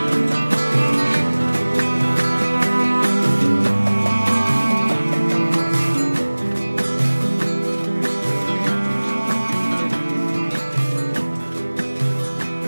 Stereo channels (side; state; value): both; inverted; correlation -1.00